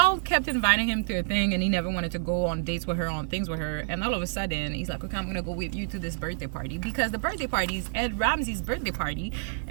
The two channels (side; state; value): left; silent; 59 dB below the other